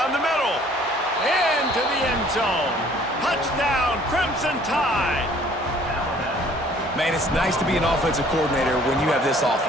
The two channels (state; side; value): normal; both; correlation 0.56